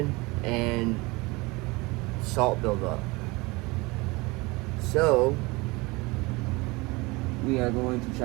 and salt buildup. So we are going to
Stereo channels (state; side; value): quieter; left; 24.2 dB